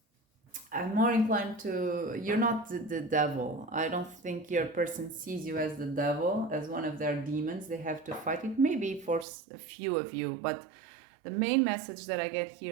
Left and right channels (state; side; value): drops out; left; at 9.2 s